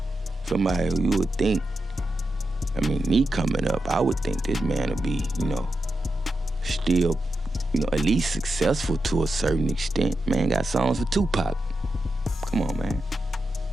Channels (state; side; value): normal; both; correlation 0.88